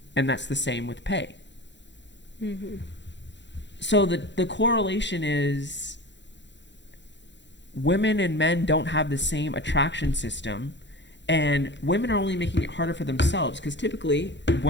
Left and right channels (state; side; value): late; right; 0.52 ms